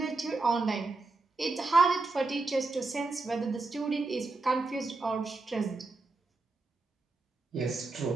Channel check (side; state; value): left; quieter; 3.4 dB